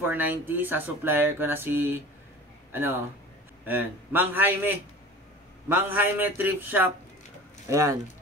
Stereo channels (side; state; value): both; normal; correlation 0.39